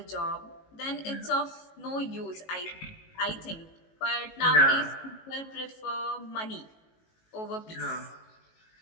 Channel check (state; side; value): late; right; 18 ms